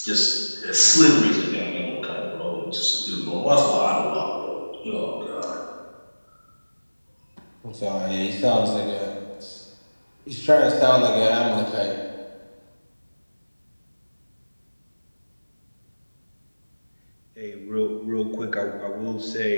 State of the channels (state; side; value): inverted; both; correlation -1.00